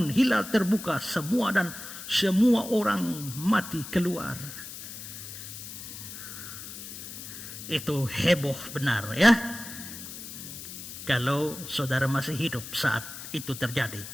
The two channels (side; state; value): left; noise; hiss, 11 dB below the sound